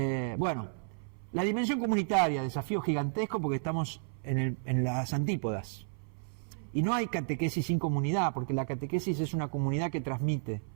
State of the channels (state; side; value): silent; left; 56 dB below the other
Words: Bueno, la dimensión comunitaria, desafío gigantesco porque estamos en las antípodas. Y no hay catequesis sin comunidad, porque la catequesis es una comunidad que transmite.